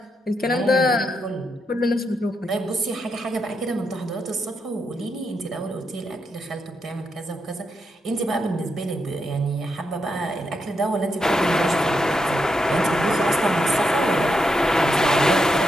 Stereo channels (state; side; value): normal; both; correlation 0.82